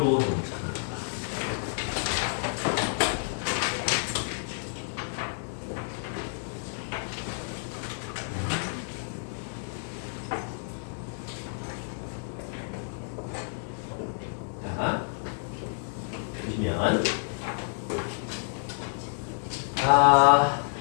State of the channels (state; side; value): silent; right; 57 dB below the other